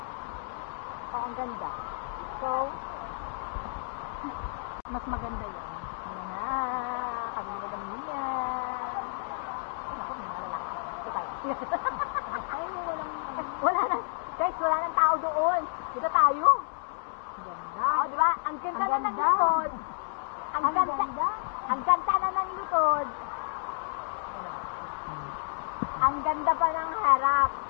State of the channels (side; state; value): right; silent; digital silence